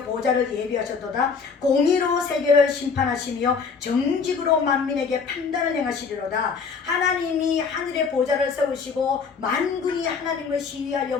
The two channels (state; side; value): quieter; right; 5.4 dB